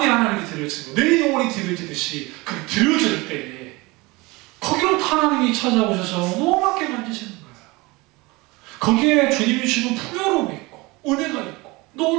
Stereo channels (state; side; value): quieter; left; 23.7 dB